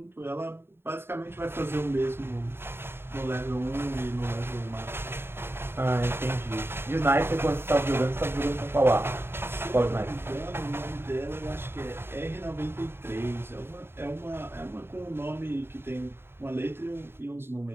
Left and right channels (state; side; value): late; left; 0.11 ms